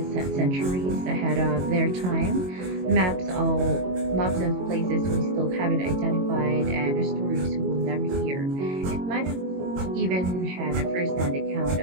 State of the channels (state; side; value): late; left; 22 ms